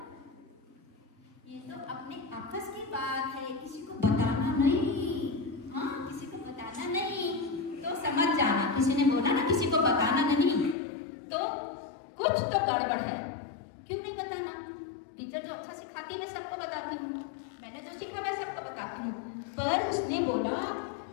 ये तो अपने आपस की बात है, किसी को बताना नहीं, हाँ किसी को बताना नहीं। तो समझ जाना, किसी ने बोला ना किसी को बताना नहीं, तो कुछ तो गड़बड़ है। क्यों नहीं बताना? टीचर जो अच्छा सिखाती है मैं सबको बताती हूँ, मैंने जो सीखा मैं सबको बताती हूँ, पर उसने बोला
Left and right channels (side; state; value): right; drops out; at 10.8 s